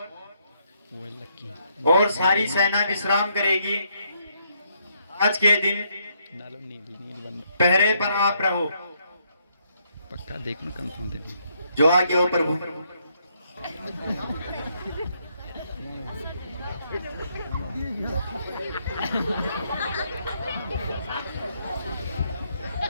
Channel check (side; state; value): both; inverted; correlation -0.74